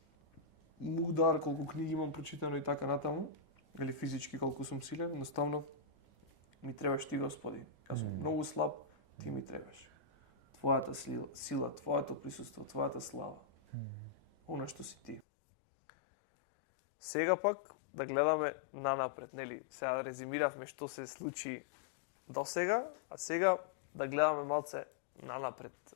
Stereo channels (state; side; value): drops out; right; at 15.2 s